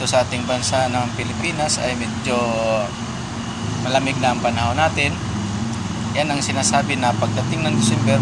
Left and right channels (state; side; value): identical; both; correlation 1.00